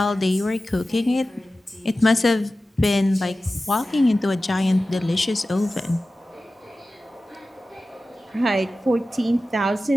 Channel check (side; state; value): both; normal; correlation 0.95